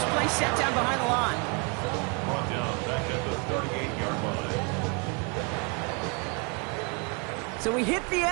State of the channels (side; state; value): left; quieter; 33.0 dB